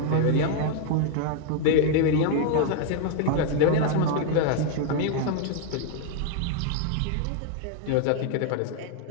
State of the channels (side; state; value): both; different; correlation 0.00